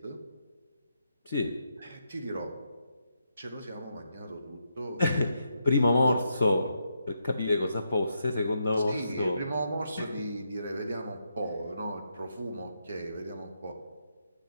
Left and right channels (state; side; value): inverted; both; correlation -0.81